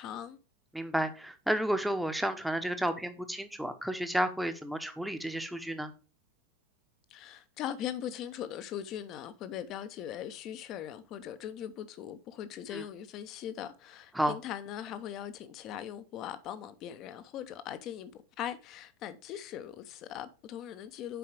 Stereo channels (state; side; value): normal; both; correlation 0.75